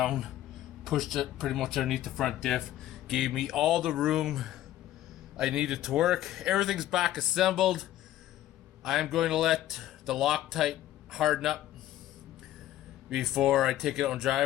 pushed it pretty much underneath the front diff, gave me all the room I needed to work. Everything's back assembled. I'm going to let the Loctite harden up before I take it out and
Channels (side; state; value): right; quieter; 13.4 dB